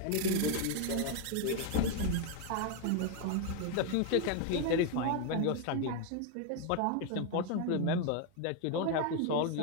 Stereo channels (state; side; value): different; both; correlation 0.01